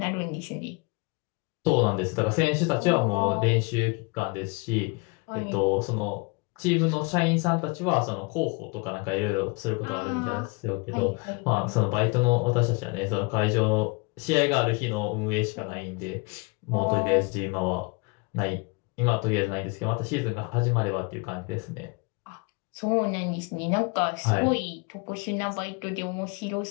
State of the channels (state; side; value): quieter; right; 29.4 dB